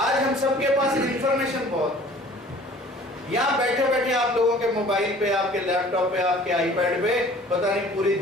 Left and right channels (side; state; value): both; normal; correlation 0.49